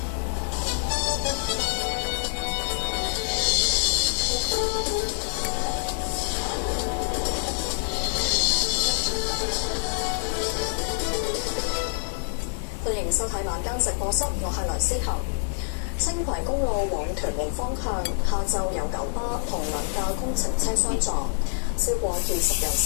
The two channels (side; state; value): right; silent; digital silence